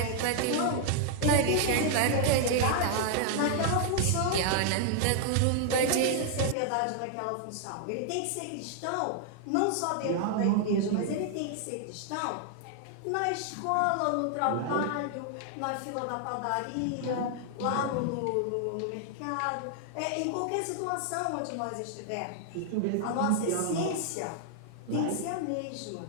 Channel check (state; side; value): different; both; correlation 0.00